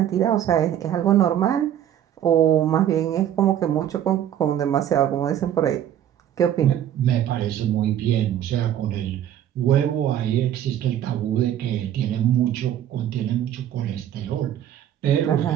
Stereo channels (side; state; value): left; quieter; 10.8 dB